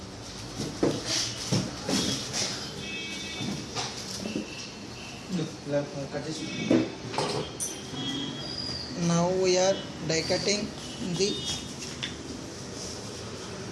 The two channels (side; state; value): both; identical; correlation 1.00